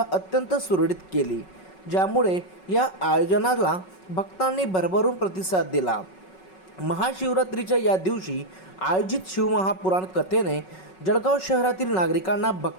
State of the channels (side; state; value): right; late; 5.4 ms